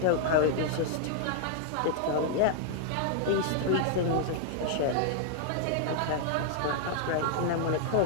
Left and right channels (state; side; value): different; both; correlation -0.01